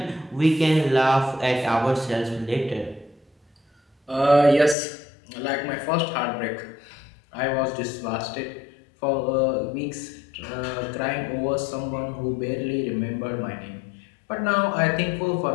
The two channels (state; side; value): drops out; right; at 4.8 s